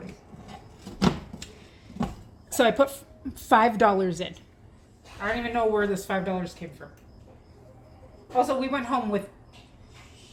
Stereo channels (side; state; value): both; identical; correlation 1.00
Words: So I put $5 in. I don't even know where this $5 came from. Also, we went home with